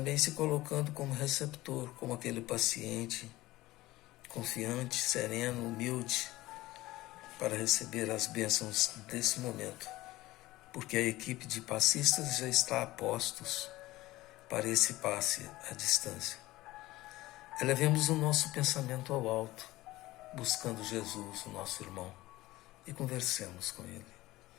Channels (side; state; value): right; quieter; 17.9 dB